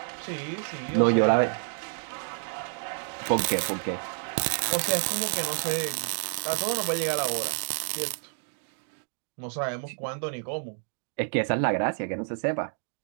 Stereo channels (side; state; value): left; silent; 58 dB below the other